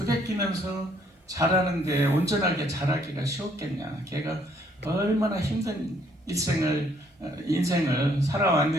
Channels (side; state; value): both; normal; correlation 0.66